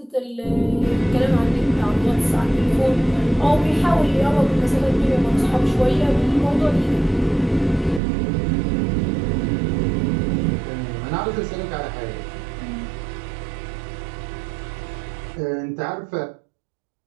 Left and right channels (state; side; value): drops out; left; at 8.0 s